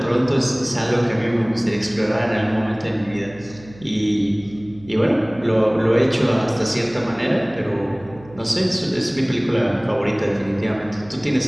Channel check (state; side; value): noise; right; hum, 21 dB below the sound